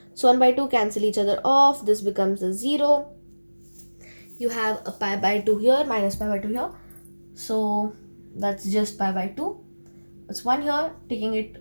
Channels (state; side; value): inverted; both; correlation -1.00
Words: So 1 by 2 cancel each other off. This becomes a 0. You have a pi by 2 here, minus pi by 2 here. So that's just pi by 2. It's 1 here,